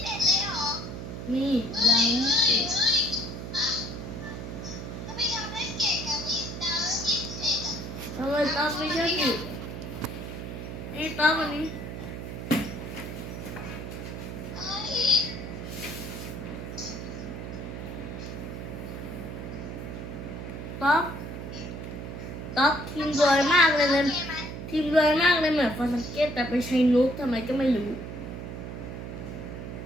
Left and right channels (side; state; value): right; noise; hum, 8 dB below the sound